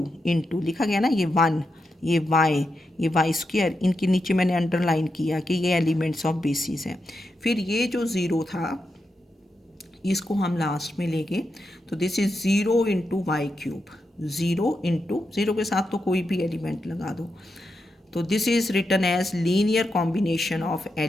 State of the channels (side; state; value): both; normal; correlation 0.86